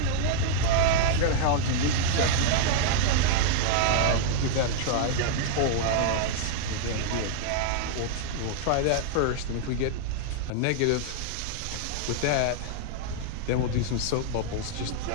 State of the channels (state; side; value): different; both; correlation -0.01